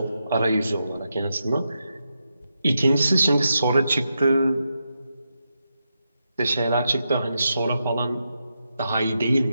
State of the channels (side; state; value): both; inverted; correlation -0.86